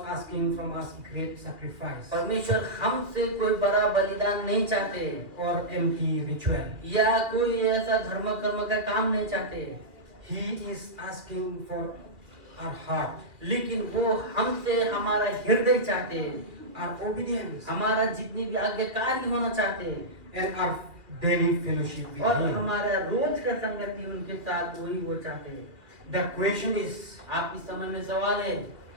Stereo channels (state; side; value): late; left; 2.2 ms